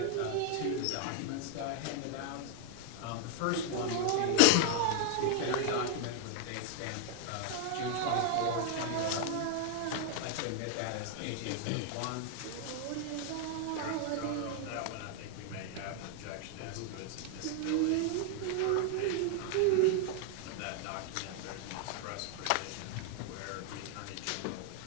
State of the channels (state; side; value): different; both; correlation 0.00